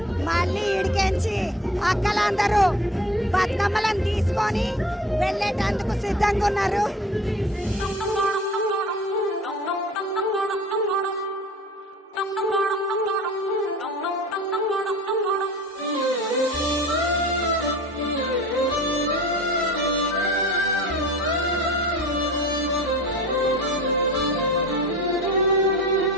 మళ్ళీ ఈడికెంచి అక్కలందరూ బతుకమ్మలను తీసుకొని వెళ్ళేటందుకు సిద్ధంగా ఉన్నారు.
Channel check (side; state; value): both; normal; correlation 0.42